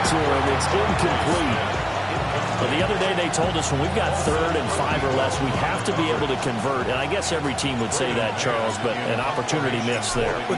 to him. It's incomplete. But the other day they told us when we've got 3rd and 5 or less, we have to be able to convert. And I guess every team would say that, Charles, but an opportunity missed there.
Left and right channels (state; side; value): identical; both; correlation 1.00